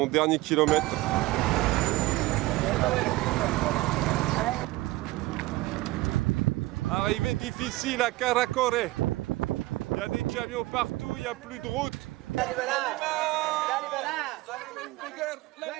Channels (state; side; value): quieter; left; 19.1 dB